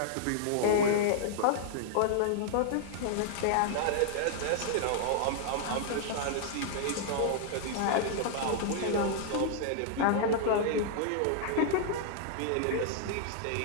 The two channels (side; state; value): both; different; correlation -0.01